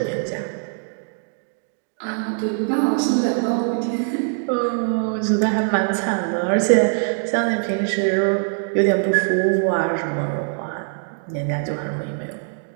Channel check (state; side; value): silent; left; 63 dB below the other